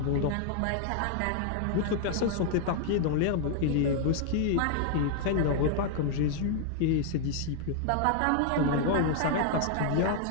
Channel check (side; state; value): both; different; correlation 0.00